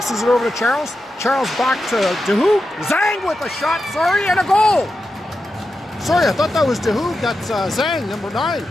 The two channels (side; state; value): both; normal; correlation 0.89